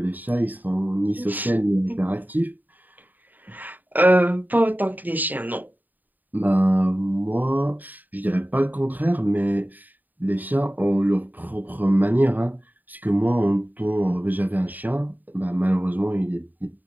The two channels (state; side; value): late; left; 0.086 ms